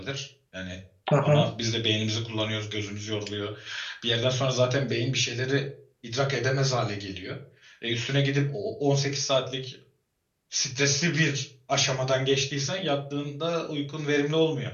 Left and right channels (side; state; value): both; identical; correlation 1.00